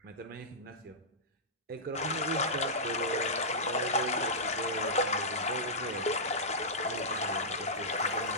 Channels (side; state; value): both; normal; correlation -0.14